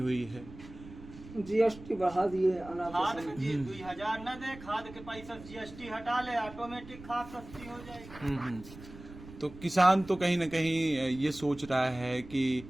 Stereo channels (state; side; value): noise; right; rumble, 17 dB below the sound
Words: है। जीएसटी बढ़ा दिए, खाद के दिए 2000 न दे, खाद के पैसा जीएसटी हटा ले, ऑटोमेटिक खाद सस्ती हो जाएगी। तो किसान तो कहीं न कहीं ये सोच रहा है कि